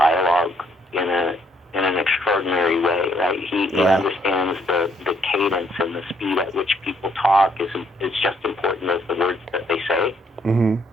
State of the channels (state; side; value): normal; both; correlation 0.69